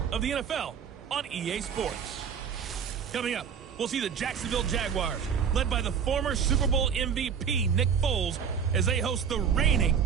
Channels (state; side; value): quieter; left; 7.2 dB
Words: of the NFL on EA Sports. Coming up, we'll see the Jacksonville Jaguars, led by the former Super Bowl MVP Nick Foles, as they host the reigning